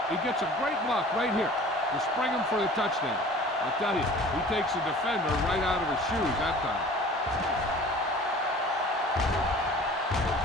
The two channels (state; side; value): normal; both; correlation 0.45